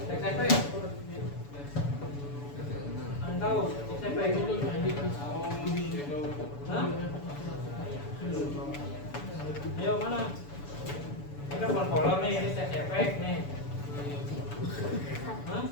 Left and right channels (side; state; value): right; late; 7.0 ms